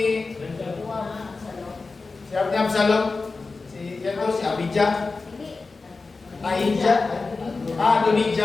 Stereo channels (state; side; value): quieter; right; 4.0 dB